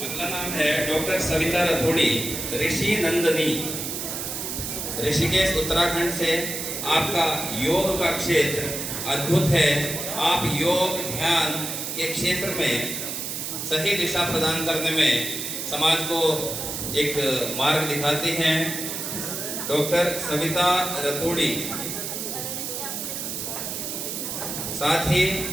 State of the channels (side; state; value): right; noise; hiss, 5 dB below the sound